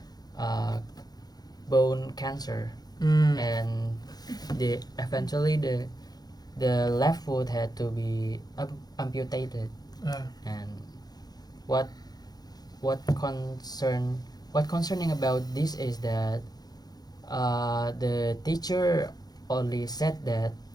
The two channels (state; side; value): late; right; 0.19 ms